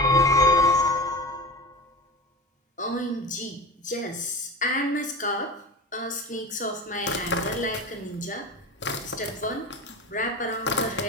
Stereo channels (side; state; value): both; normal; correlation 0.29